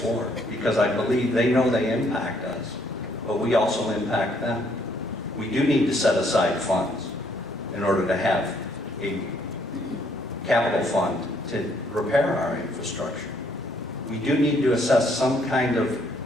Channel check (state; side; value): normal; both; correlation 0.68